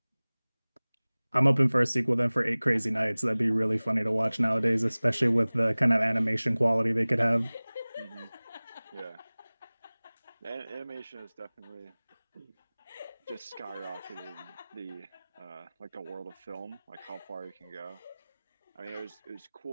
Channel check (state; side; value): inverted; both; correlation -1.00